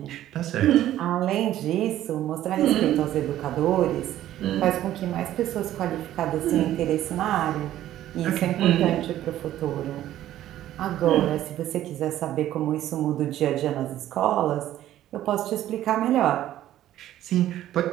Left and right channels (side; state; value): left; quieter; 13.0 dB